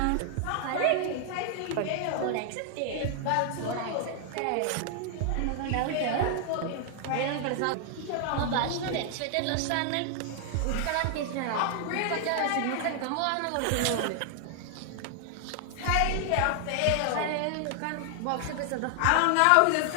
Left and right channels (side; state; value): both; different; correlation 0.00